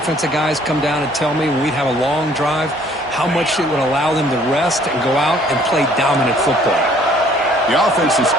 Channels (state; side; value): normal; both; correlation 0.59